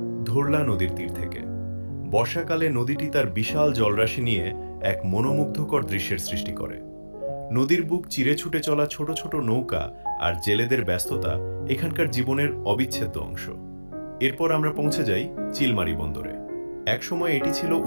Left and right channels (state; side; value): inverted; both; correlation -1.00